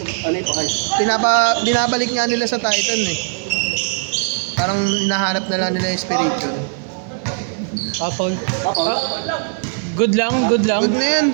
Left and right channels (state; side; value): silent; left; digital silence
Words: ano yung pakay. Binabalik nga nila sa Titan eh. Parang hinahanap na lang nila yung Spiridion. Paul. Tapos, Good lang, good lang. Good na yan.